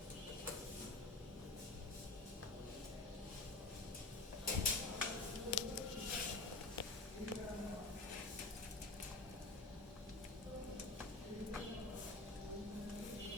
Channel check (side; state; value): right; quieter; 3.2 dB